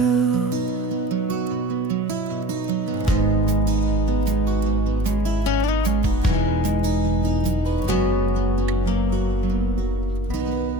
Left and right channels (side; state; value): both; normal; correlation 0.43